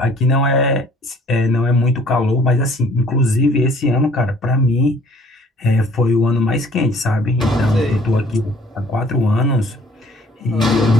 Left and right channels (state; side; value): normal; both; correlation 0.56